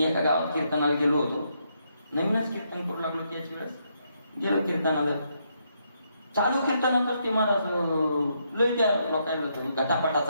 एका गावात कीर्तनाला गेलो होतो, नवीनच कीर्तन करू लागलो. त्याच वेळेस गेलो कीर्तनाला, चालू कीर्तनातच ते महाराज लय त्या लोकांना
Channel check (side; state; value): both; inverted; correlation -0.77